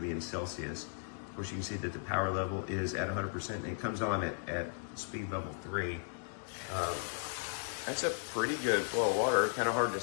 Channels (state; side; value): silent; right; digital silence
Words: be in Celsius. Of course, you can see that the power level is at 100%, and it comes on at speed level 3. That's a pretty good flow of water. Kind of hard to